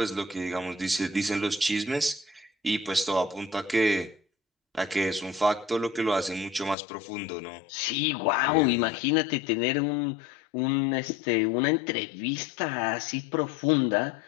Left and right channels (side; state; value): right; drops out; at 6.8 s